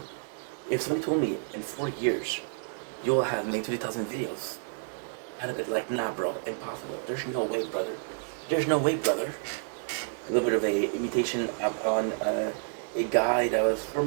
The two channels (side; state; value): left; silent; digital silence